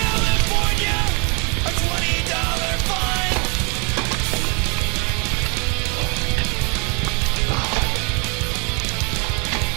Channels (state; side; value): quieter; left; 34.3 dB